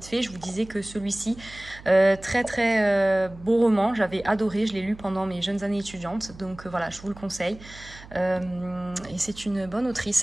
fait. Je vous disais que celui-ci, très beau roman, j'avais adoré, je l'ai lu pendant mes jeunes années étudiantes, donc voilà, je vous le conseille. Et c'est une bonne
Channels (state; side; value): noise; right; hum, 19 dB below the sound